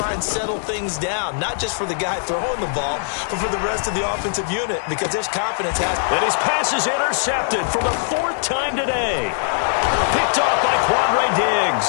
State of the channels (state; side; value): silent; right; digital silence